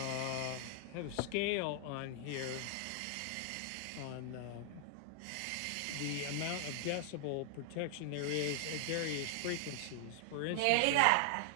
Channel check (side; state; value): both; different; correlation 0.00